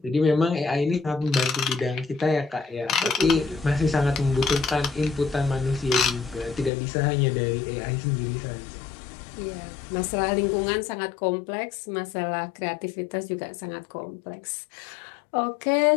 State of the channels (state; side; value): drops out; right; at 6.7 s